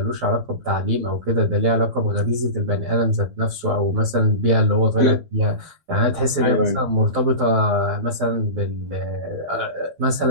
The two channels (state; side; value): late; left; 12 ms